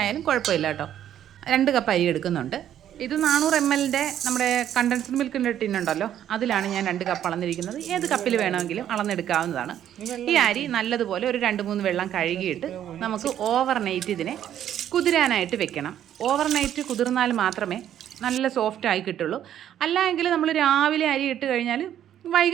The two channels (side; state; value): left; quieter; 10.7 dB